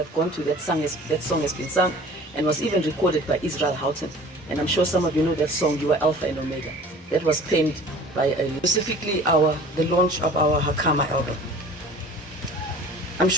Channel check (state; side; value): normal; both; correlation 0.45